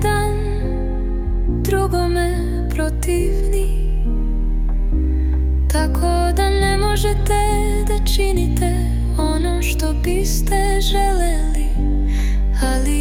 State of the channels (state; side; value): identical; both; correlation 1.00